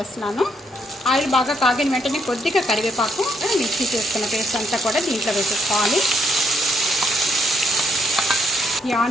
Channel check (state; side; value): normal; both; correlation 0.74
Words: ఆయిల్ బాగా కాగిన వెంటనే కొద్దిగా కరివేపాకు మిక్సీ చేసుకున్న పేస్ట్ అంతా కూడా దీంట్లో వేసేసుకోవాలి. ఈ